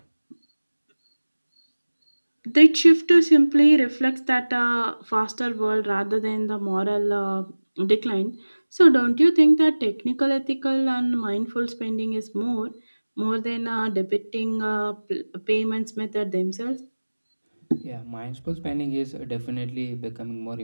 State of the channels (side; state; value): both; inverted; correlation -1.00